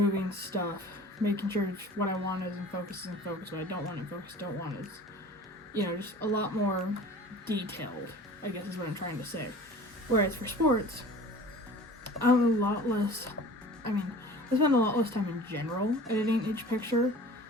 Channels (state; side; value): normal; both; correlation 0.42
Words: stuff, making sure what I want is in focus, what I don't want in focus, don't want is, you know, just a lot more detailed, I guess is what I'm trying to say. Whereas for sports, I'm a lot less, I spend a lot less time in general editing each picture.